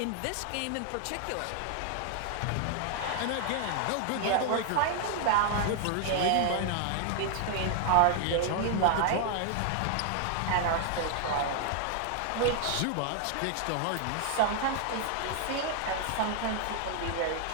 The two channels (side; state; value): both; different; correlation 0.00